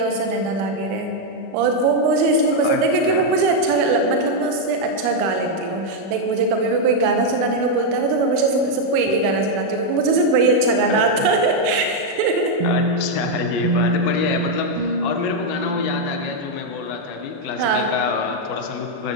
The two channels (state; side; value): late; left; 36 ms